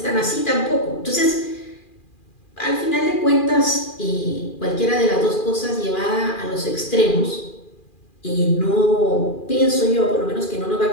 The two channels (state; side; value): late; right; 2.4 ms